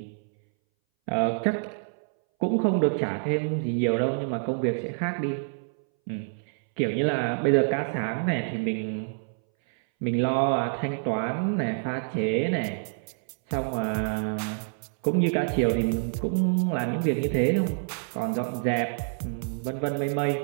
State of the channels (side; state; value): left; silent; 60 dB below the other